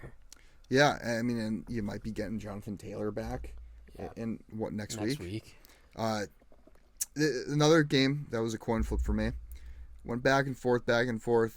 Yeah, I mean, and you might be getting Jonathan Taylor back in next week. Another game that was a coin flip for me. Went back and forth.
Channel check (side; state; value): both; identical; correlation 1.00